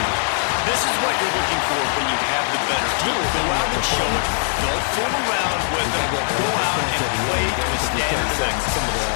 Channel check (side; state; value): right; silent; digital silence